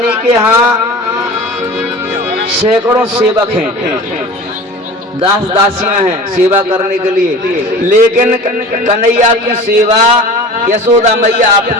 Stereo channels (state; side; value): normal; both; correlation 0.38